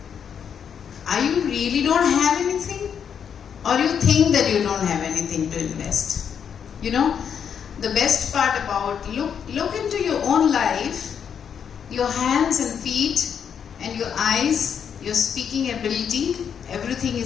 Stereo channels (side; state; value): right; quieter; 7.7 dB